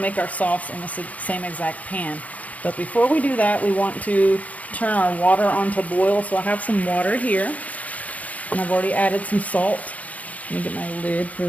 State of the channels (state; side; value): late; right; 0.071 ms